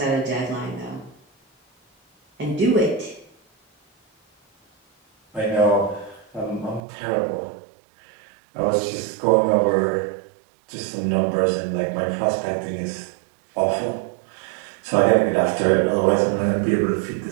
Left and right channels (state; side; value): drops out; left; at 6.8 s